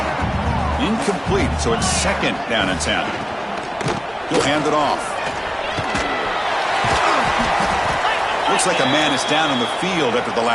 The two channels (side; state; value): both; identical; correlation 1.00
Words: Incomplete, so it's 2nd down and 10. He'll hand it off. Looks like a man is down on the field after the